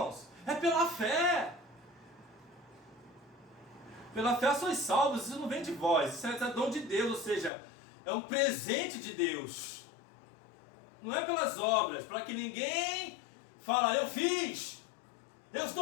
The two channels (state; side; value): drops out; right; at 7.5 s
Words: É pela fé. Pela fé sois salvos, isso não vem de vós, isso é dom de Deus, ou seja, é um presente de Deus. Não é pelas obras, para que ninguém fale, eu fiz, eu